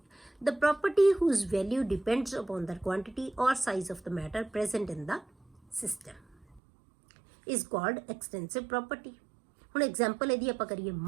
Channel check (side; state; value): left; drops out; at 6.6 s